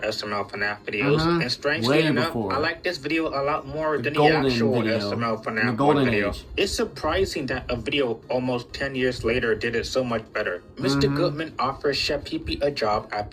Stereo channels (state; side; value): identical; both; correlation 1.00